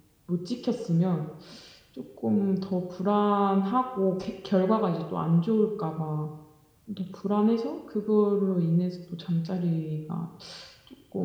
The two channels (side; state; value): both; identical; correlation 1.00